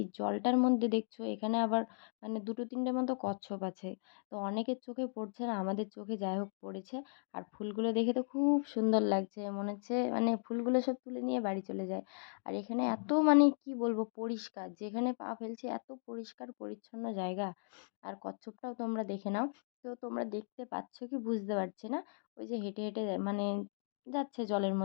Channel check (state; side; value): silent; right; digital silence